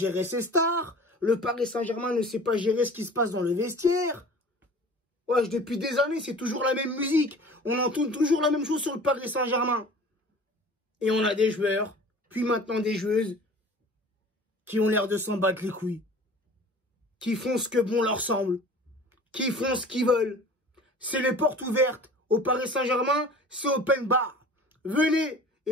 ses stars. Le Paris Saint-Germain ne sait pas gérer ce qui se passe dans le vestiaire. Ouais, depuis des années, c'est toujours la même musique. On entend toujours la même chose sur le Paris Saint-Germain. Et on a des joueurs, puis maintenant des joueuses, qui ont l'air de s'en battre les couilles. Qui font ce que bon leur semble. Qui font ce qu'ils veulent. C'est les portes ouvertes. Au Paris Saint-Germain, c'est open bar. Venez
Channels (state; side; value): normal; both; correlation 0.43